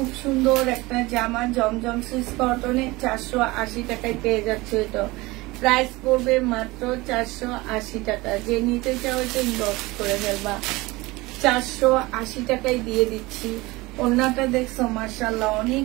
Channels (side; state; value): left; quieter; 21.6 dB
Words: সুন্দর একটা জামা, জমজম সুইস কটনে 480 টাকায় পেয়ে যাচ্ছে। এটা প্রাইস পড়বে মাত্র 480 টাকা। যে নিতে চাও এটা ইনবক্স করে ফেলবা। 480 টাকায় দিয়ে দিচ্ছি। ওড়নাটা দেখছো মাশাআল্লাহ